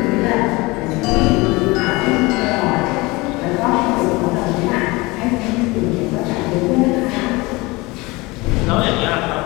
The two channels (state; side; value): quieter; right; 23.4 dB